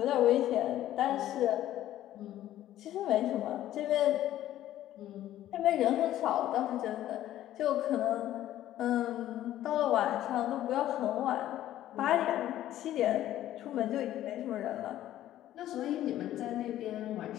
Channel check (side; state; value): right; quieter; 13.1 dB